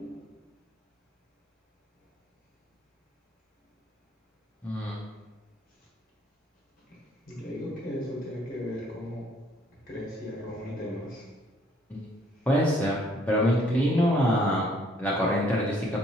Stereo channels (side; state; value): both; normal; correlation 0.63